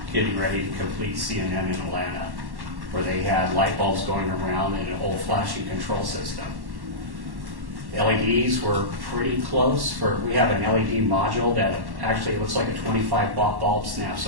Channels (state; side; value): late; left; 1.1 ms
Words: getting ready to complete CNN in Atlanta, where they had light bulbs going around in an old flashing control system. LEDs were pretty close. We have an LED module that actually looks like a 25-watt bulb snaps